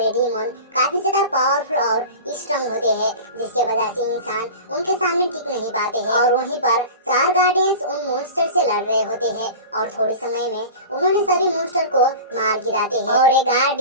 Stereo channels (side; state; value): both; inverted; correlation -0.33